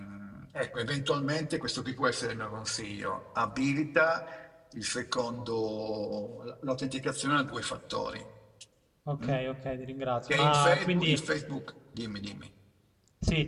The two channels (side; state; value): both; identical; correlation 1.00